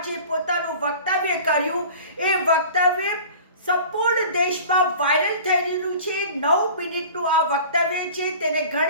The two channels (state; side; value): inverted; both; correlation -0.42